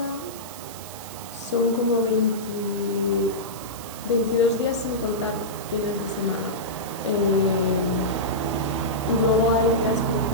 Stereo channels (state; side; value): noise; right; hiss, 14 dB below the sound